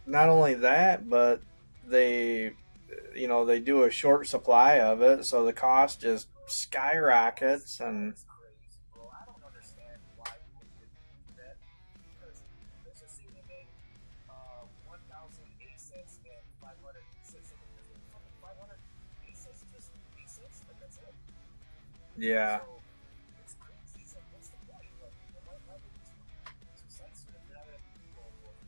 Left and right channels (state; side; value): inverted; both; correlation -1.00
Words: Not only that, but they, they do a short supply of it, so the cost just skyrockets. And yeah,